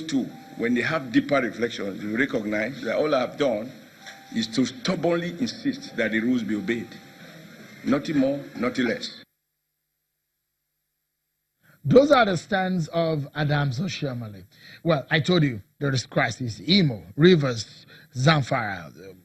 two, when they have deeper reflections, they recognize that all I have done is to stubbornly insist that the rules be obeyed. Nothing more, nothing less. Those are the stands of Adams Oshiomhole. Well, I told you there is crisis. Imo, Rivers, Zamfara,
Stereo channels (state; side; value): identical; both; correlation 1.00